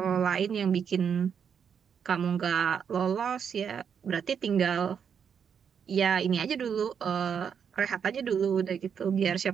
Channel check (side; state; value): left; quieter; 7.3 dB